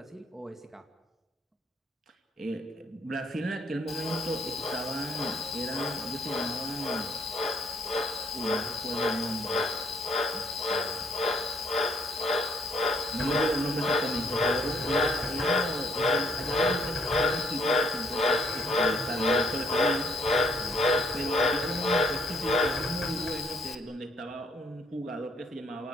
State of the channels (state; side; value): normal; both; correlation 0.66